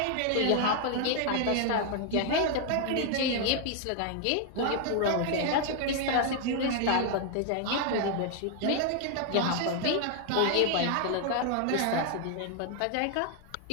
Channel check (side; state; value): both; different; correlation 0.00